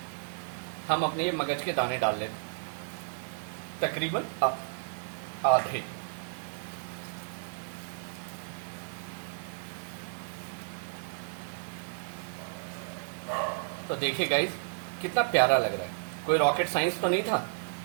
हम अपने मगज के दाने डाल लेते, तकरीबन आधे। तो देखिए गाइस, कितना प्यारा लग रहा है। कोई रॉकेट साइंस तो नहीं था।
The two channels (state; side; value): silent; left; 56 dB below the other